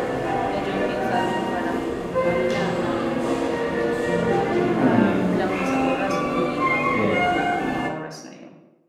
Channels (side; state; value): both; identical; correlation 1.00